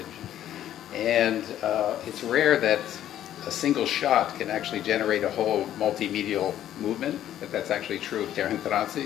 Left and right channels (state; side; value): quieter; right; 11.7 dB